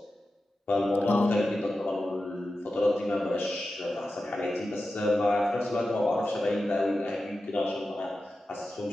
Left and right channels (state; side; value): normal; both; correlation 0.92